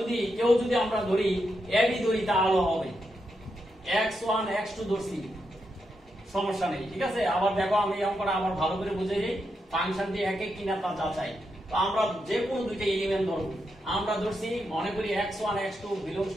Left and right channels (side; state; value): both; normal; correlation 0.84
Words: আমরা ধরি ab ধরি তাহলে হবে x1 x2 ধরছি, সমস্যা নেই, ঠিক আছে। আবার দেখো আমি অঙ্কটা আবার ভালো করে বুঝে যাই, ফাংশনটি এক এক কিনা তা যাচাই। তো আমরা যে কোনো দুইটা এলিমেন্ট ধরব, আমরা ধরছি মনে করি x1 x2 belongs